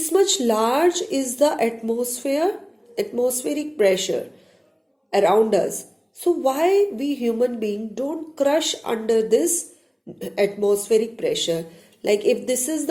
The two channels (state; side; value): identical; both; correlation 1.00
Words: much large is the atmospheric pressure around us. So why we human beings don't crush under this atmospheric pressure? Like if this is